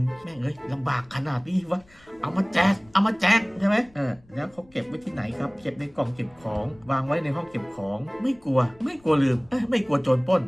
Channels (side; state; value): left; noise; rumble, 29 dB below the sound